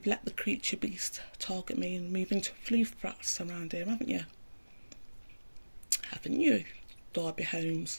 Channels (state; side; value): inverted; both; correlation -1.00